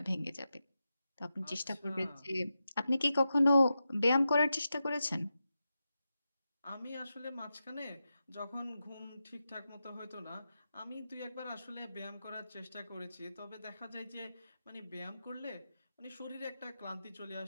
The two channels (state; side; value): inverted; both; correlation -0.90